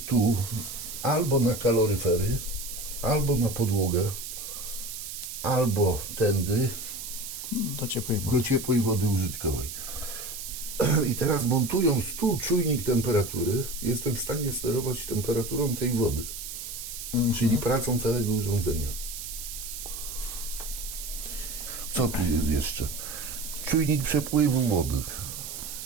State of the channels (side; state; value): right; noise; hiss, 8 dB below the sound